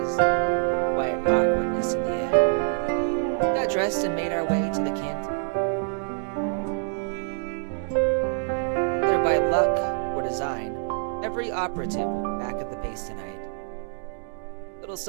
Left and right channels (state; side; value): silent; left; digital silence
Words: quiet awkwardness in the air. We got dressed and made our way to the canteen. Whether by luck or design, every operative will be back at the base tonight. Little